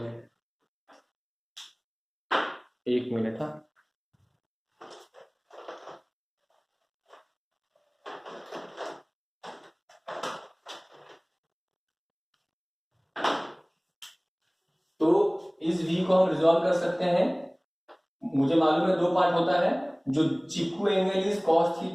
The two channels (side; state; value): both; identical; correlation 1.00